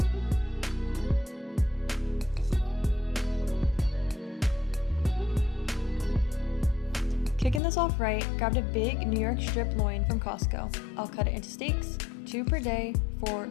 Kicking this off right, grabbed a big New York strip loin from Costco. I'll cut it into steaks, 2 per day for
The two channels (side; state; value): right; drops out; at 7.6 s